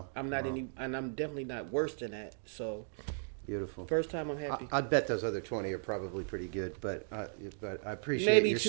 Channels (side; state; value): left; silent; digital silence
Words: I'm not and I'm definitely not worse than that. So beautiful. First time I'm happy. I'd bet those other 20 are probably pretty good, but I appreciate Maybe your 2